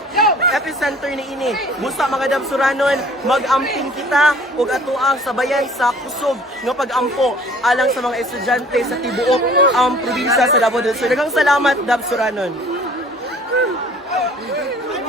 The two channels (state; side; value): normal; both; correlation 0.51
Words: epicenter ni ini. Busa mga dab Suranon, mag-amping kita ug atuang sabayan sa kusog nga pag-ampo alang sa mga estudyante sa tibuok ang probinsya sa Davao del Sur. Daghang salamat dab Suranon.